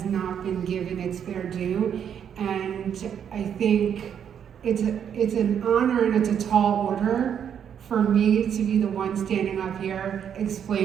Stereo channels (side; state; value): left; quieter; 8.5 dB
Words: not been given its fair due, and I think it's an honor and it's a tall order for me to be the one standing up here